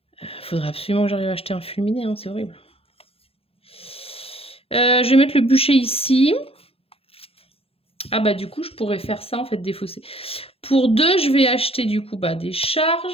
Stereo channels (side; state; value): right; late; 0.28 ms